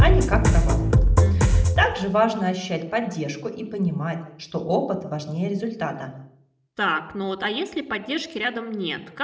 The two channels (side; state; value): both; identical; correlation 1.00